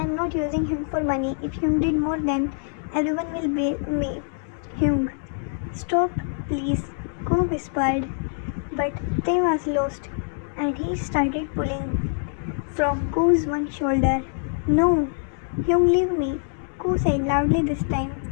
am not using him for money. If Hyun did more, then everyone will blame me." "Hyun, stop please, Ko whispered. But Tae was lost, and he started pulling from Ko's one shoulder. No, Hyung, leave me, Ko said loudly this time.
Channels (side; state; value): right; silent; 62 dB below the other